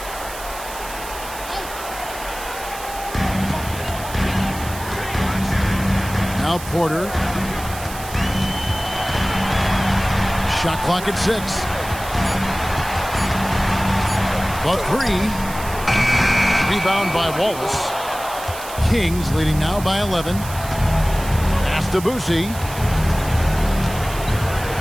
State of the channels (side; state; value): right; noise; hiss, 13 dB below the sound